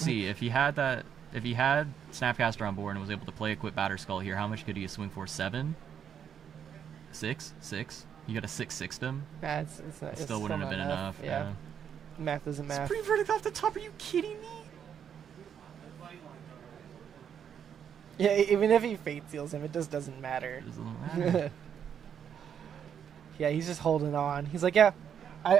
see if he had Snapcaster on board and was able to play Equip Batter Skull here, how much could he swing for? 7? 6? You got a 6-6 him? Nah, it's not. It It's still wouldn't have not been enough. Yeah. Math isn't math. Supreme Verdict off the top, are you kidding me? Yeah, even if he fate seals him, it just doesn't matter. It doesn't matter. Yeah, he's just holding on. He's like, yeah,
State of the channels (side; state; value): left; quieter; 8.3 dB